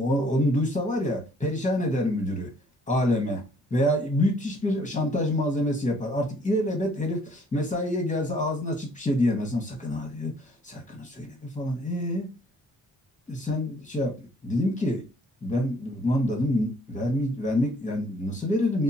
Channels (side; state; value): both; normal; correlation 0.61